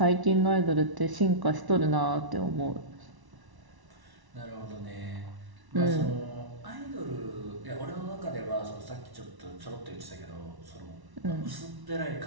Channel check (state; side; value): late; left; 1.1 ms